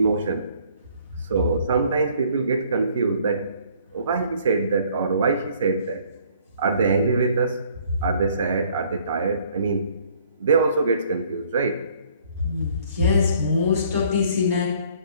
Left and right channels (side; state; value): both; inverted; correlation -0.59